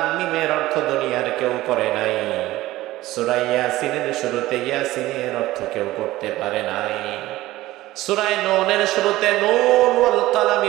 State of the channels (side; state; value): left; quieter; 16.9 dB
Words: মিমের অর্থ দুনিয়ার কেউ করে নাই। সূরা ইয়াসিনের শুরুতে ইয়াসিনের অর্থ কেউ করতে পারে নাই। সূরা নূনের শুরুতে নূন ওয়াল